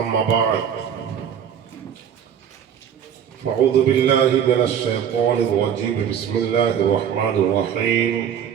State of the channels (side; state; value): left; quieter; 8.6 dB